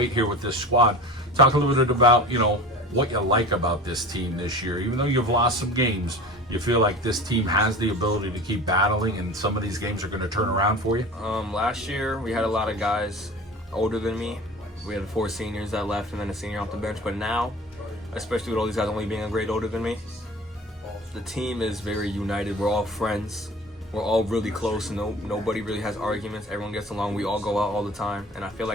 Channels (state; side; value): normal; both; correlation 0.38